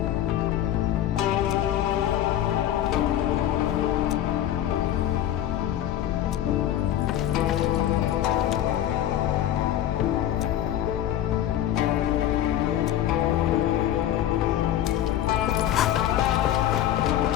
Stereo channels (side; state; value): right; quieter; 11.8 dB